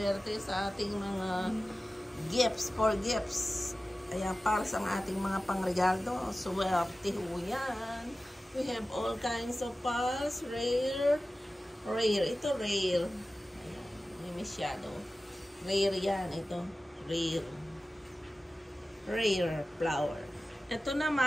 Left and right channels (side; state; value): both; normal; correlation 0.95